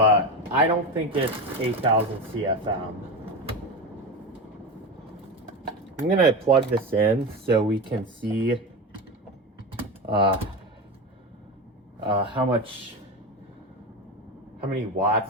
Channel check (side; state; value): both; normal; correlation 0.22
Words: I don't think it's 8,000 CFM. I'm gonna plug this in so we can see how many